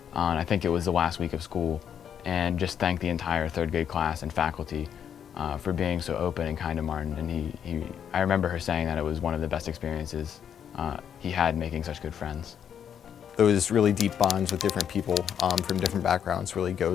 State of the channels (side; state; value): right; quieter; 8.6 dB